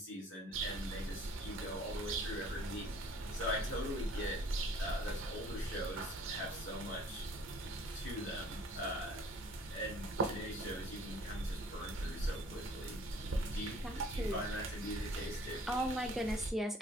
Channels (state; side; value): normal; both; correlation 0.54